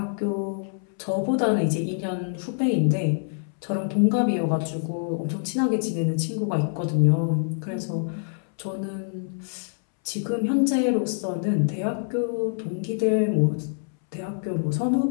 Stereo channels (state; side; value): silent; right; 61 dB below the other